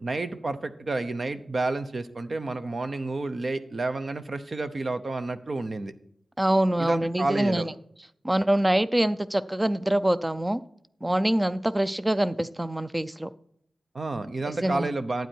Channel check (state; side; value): normal; both; correlation 0.98